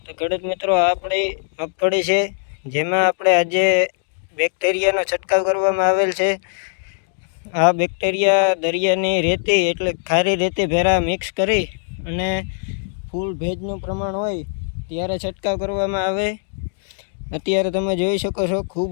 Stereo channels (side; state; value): right; silent; digital silence